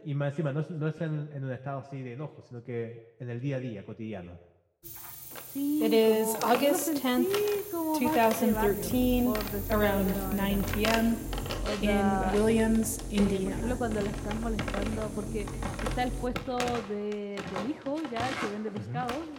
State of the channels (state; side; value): identical; both; correlation 1.00